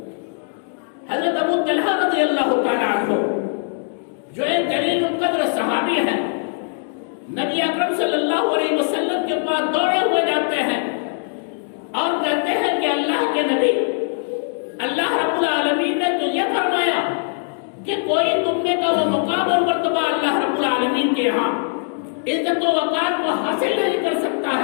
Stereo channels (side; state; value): right; silent; 65 dB below the other